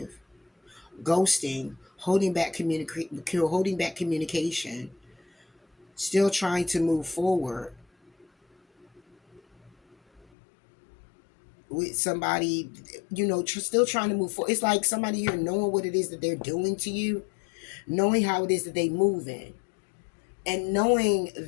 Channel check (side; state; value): right; drops out; at 10.2 s